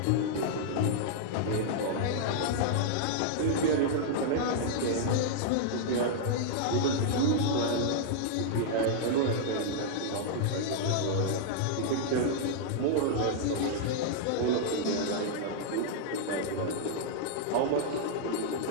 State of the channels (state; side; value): different; both; correlation -0.01